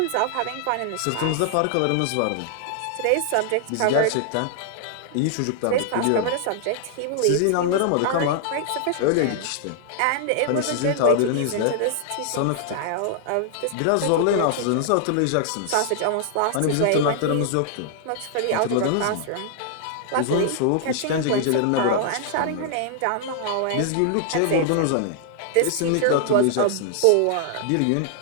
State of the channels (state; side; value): different; both; correlation -0.01